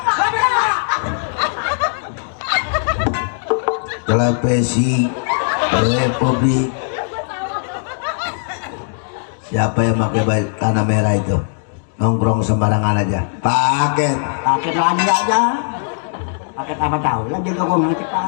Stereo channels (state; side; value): silent; right; digital silence